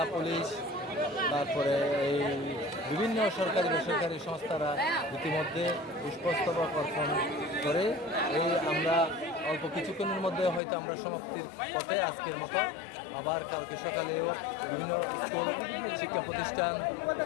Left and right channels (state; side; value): drops out; right; at 10.6 s